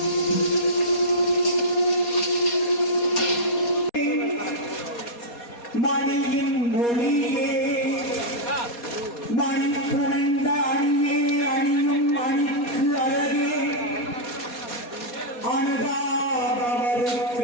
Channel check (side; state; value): right; late; 4.2 ms